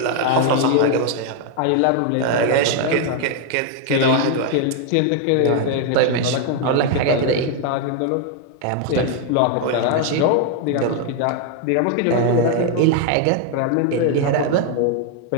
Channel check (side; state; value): both; different; correlation 0.01